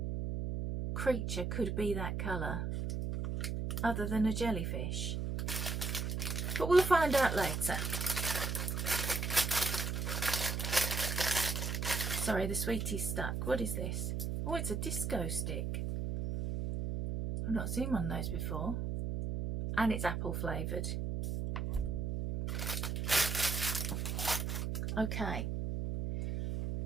creature could be that colour other than a jellyfish. But we'll find out later. Sorry, the sweetie's stuck. What is this? Oh, it's a disco stick. I've not seen one of those before. And it's apple flavoured. Okay,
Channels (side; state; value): right; noise; hum, 1 dB below the sound